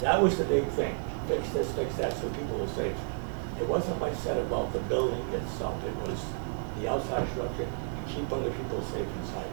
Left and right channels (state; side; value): silent; left; digital silence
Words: That was the big thing. Fix this, fix that, so people are safe. There wasn't much said about the building itself. It was the outside structure, you keep other people safe inside.